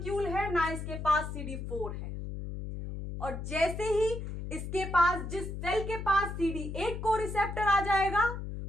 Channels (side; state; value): left; noise; hum, 6 dB below the sound